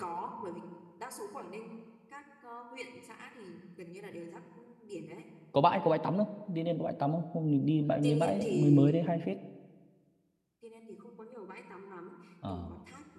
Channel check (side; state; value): both; identical; correlation 1.00